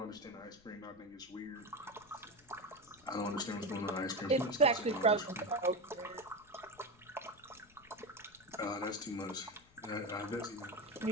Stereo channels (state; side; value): noise; left; rumble, 27 dB below the sound